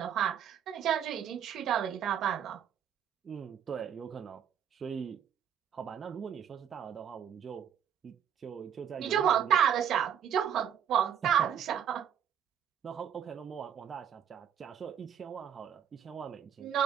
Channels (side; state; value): left; quieter; 8.9 dB